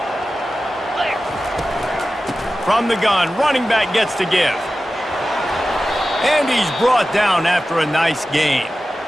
From the gun, running back gets to give. And he's brought down after a nice gain.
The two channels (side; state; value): both; normal; correlation 0.94